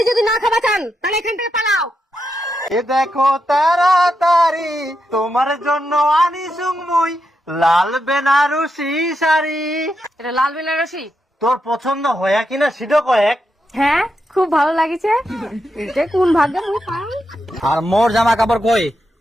যদি না খাবা চান তাহলে এখান থেকে পালাও। এ দেখো তাড়াতাড়ি তোমার জন্য আনি সুংমুই লাল বেনারসি শাড়ি। এটা লাল বেনারসি তোর পছন্দ হয়া কিনা সেটা কয়েক। হ্যাঁ খুব ভালো লাগিছে এটা কোন ভাগ্যে মুই পাই। আর মোর জামা কাপড় কই?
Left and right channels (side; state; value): both; normal; correlation 0.85